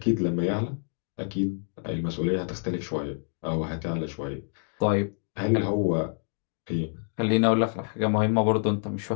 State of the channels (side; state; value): right; silent; 60 dB below the other